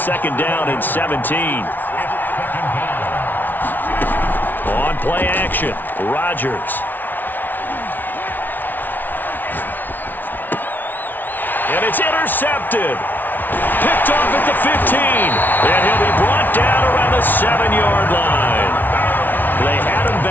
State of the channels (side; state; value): right; late; 0.087 ms